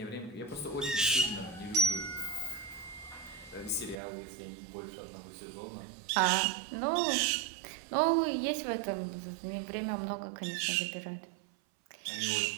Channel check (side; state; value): left; drops out; at 4.0 s